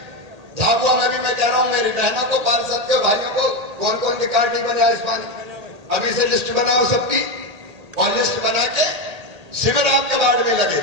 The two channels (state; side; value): late; left; 1.8 ms